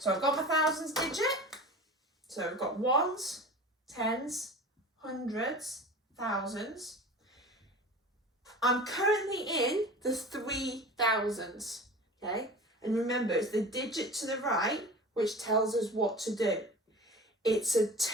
I've got my thousands digit. So I've got ones, tens, hundreds, thousands. I'm currently in the 3,000s, okay? And remember, it's the digit to the right which tells us what to do. It's a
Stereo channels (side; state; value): both; normal; correlation 0.36